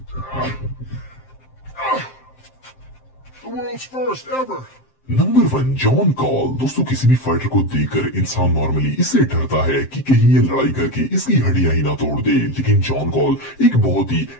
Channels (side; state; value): right; late; 7.6 ms